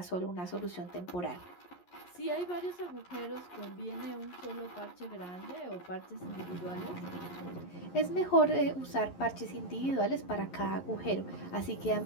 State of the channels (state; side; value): late; right; 11 ms